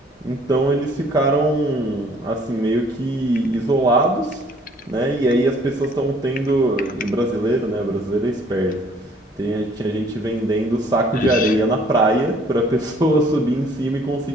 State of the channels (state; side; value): normal; both; correlation 0.59